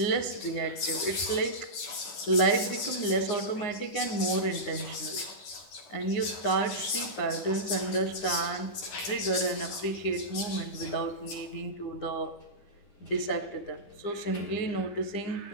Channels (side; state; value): right; late; 10 ms